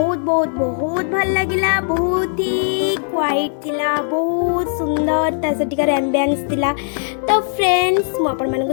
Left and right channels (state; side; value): silent; right; digital silence